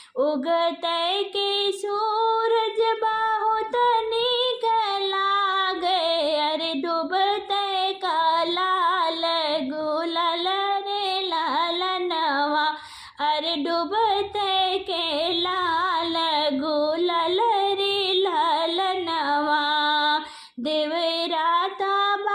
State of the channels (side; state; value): both; identical; correlation 1.00